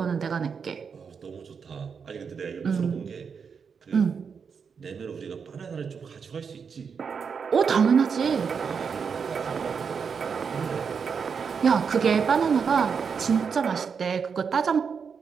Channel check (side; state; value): left; quieter; 6.2 dB